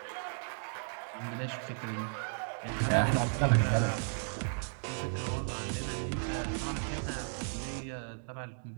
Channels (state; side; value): silent; left; digital silence